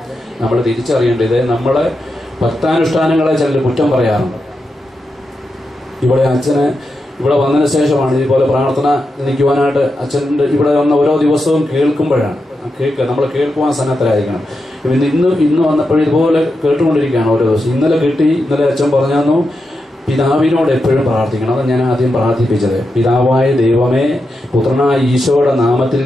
നമ്മൾ തിരിച്ചറിയേണ്ടത്, നമ്മളെ ഭക്താനുഷ്ഠാനങ്ങളെ ചിലർ കുറ്റം പറയാറുണ്ട്. ഇവിടെ അച്ഛന് ഇവിടെ വന്നതിന് ശേഷമാണ് ഇതുപോലെ പ്രാർത്ഥന നിൽക്കുവാനായിട്ട് അച്ഛൻ്റെ ഇവിടെ വന്ന ഓരോ ദിവസവും കേൾക്കുമ്പോഴാണ് നമ്മൾ കേൾക്കുവാൻ സന്നദ്ധരായിരിക്കണം. ഇന്ന് വന്നപ്പോഴും ഇതുപോലെ കേട്ടുകൊണ്ടിരിക്കുകയാണ് ഓരോ ദിവസം. ഇന്നലെ അച്ഛൻ പറഞ്ഞു, പിതാവിനോട് എപ്പോഴും പ്രാർത്ഥിക്കണം. അത് ഞാൻ ആദ്യം പ്രാർത്ഥിപ്പിച്ചത്. പിതാവായ ദൈവമേ, പുത്രനായ ഈശോയുടെ നാമത്തിൽ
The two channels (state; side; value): normal; both; correlation 0.87